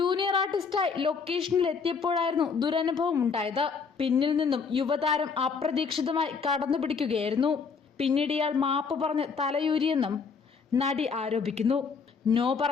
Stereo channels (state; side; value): quieter; right; 5.4 dB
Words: ആർട്ടിസ്റ്റായി ലൊക്കേഷനിൽ എത്തിയപ്പോഴായിരുന്നു ദുരനുഭവം ഉണ്ടായത്. പിന്നിൽ നിന്നും യുവതാരം അപ്രതീക്ഷിതമായി കടന്നുപിടിക്കുകയായിരുന്നു. പിന്നീട് ഇയാൾ മാപ്പ് പറഞ്ഞ് തലയൂരിയെന്നും നടി ആരോപിക്കുന്നു. നോ